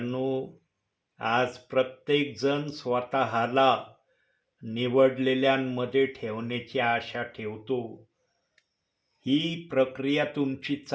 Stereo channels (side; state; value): both; identical; correlation 1.00